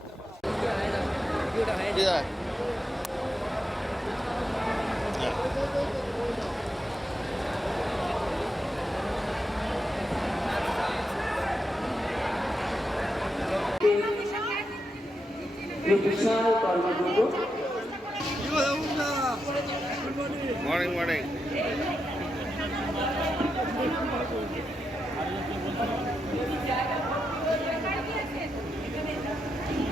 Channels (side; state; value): both; normal; correlation 0.85